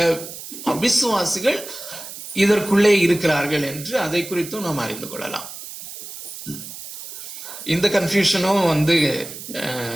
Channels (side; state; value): right; noise; hiss, 12 dB below the sound